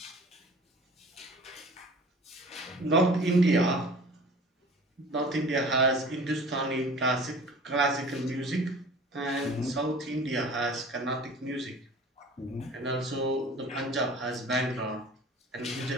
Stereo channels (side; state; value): both; normal; correlation 0.44